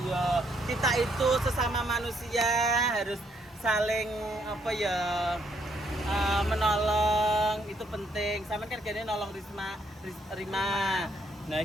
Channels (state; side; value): normal; both; correlation 0.72